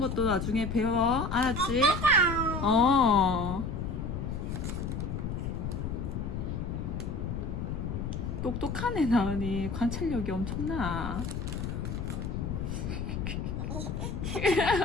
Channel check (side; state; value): left; noise; rumble, 3 dB below the sound